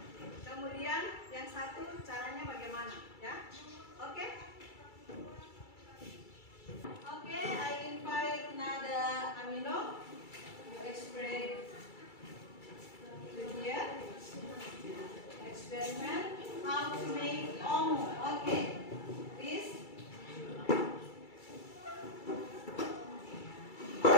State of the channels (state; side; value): late; right; 2.3 ms